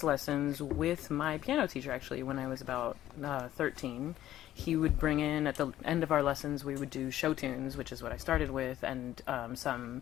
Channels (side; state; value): right; quieter; 13.1 dB